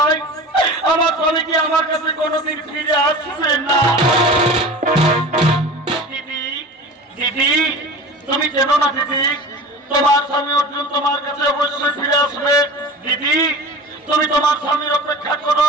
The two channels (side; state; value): both; normal; correlation 0.35